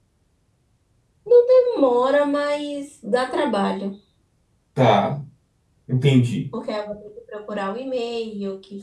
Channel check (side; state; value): both; identical; correlation 1.00